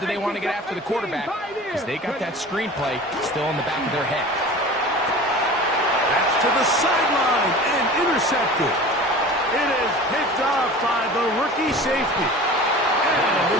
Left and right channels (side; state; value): both; normal; correlation 0.38